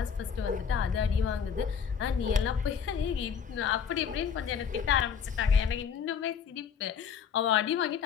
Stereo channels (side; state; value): right; quieter; 7.0 dB